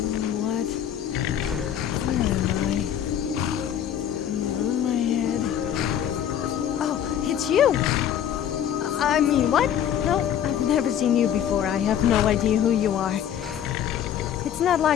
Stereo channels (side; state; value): right; quieter; 9.7 dB